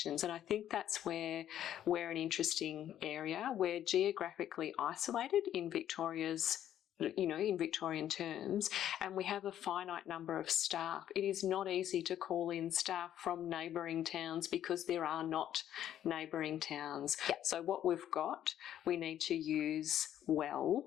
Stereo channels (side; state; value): right; quieter; 11.1 dB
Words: And I think that's where we're an interesting area. We're geographically isolated in Victoria's, in Victorian terms, and we have a finite number of staff. It is not easy to call in staff from neighbouring towns because there are not neighbouring towns. Yep. So what we've got, we need to use well.